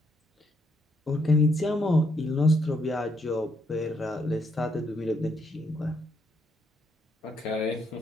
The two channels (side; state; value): both; normal; correlation 0.74